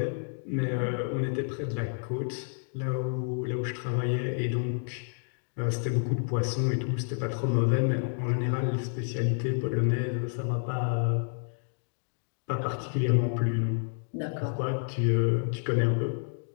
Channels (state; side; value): silent; right; digital silence